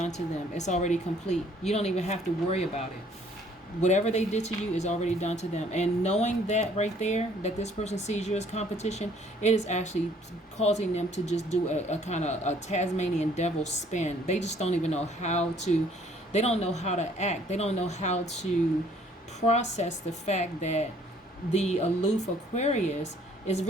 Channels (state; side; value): normal; both; correlation 0.60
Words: to them. It's already complete. You don't even have to worry about it. Whatever they did to you is already done to them. And knowing that right there, that this person sees you as competition, it is actually causing them to just do a kind of a Tasmanian devil spin. They just don't even know how to, they don't know how to act. They don't know how to process the fact that the aloof Aquarius is